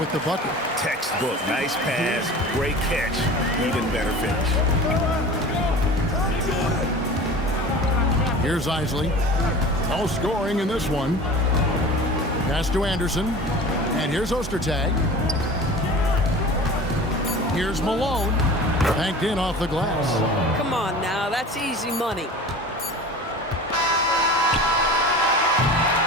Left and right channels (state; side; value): normal; both; correlation 0.38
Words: with the bucket. Textbook. Nice pass. Great catch. Even better finish. Here's Isley. No scoring in this one. Pass to Anderson. And here's Ostertag. Here's Malone. Banked in off the glass. Come on now, that's easy money.